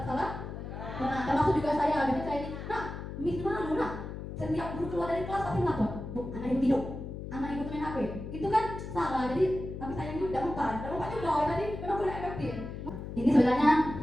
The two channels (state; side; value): noise; left; hum, 8 dB below the sound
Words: bersalah? Pernah. Termasuk juga saya. Biasanya saya ini, nah, Miss malu nak. Setiap guru keluar dari kelas pasti melapor. Bu, anak ibu tidur, anak ibu main HP. Itu kan salah. Jadi tapi sayangnya tidak mempan juga. Jadi memang kurang efektif. Ini sebenarnya